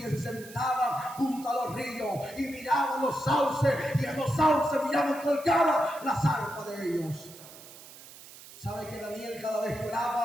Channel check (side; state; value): right; noise; hiss, 18 dB below the sound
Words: se sentaban junto a los ríos y miraban los sauces, y en los sauces miraban colgadas las arpas de ellos. ¿Sabe que Daniel cada vez que